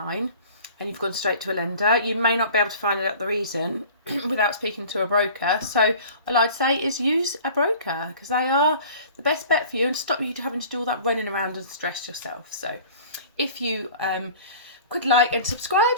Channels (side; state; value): both; inverted; correlation -0.45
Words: and you've gone straight to a lender, you may not be able to find out the reason without speaking to a broker. So all I'd say is use a broker, because they are the best bet for you and stop you having to do all that running around and stress yourself. So if you could like and subscribe